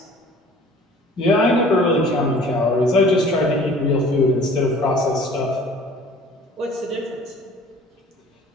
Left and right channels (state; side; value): normal; both; correlation 0.49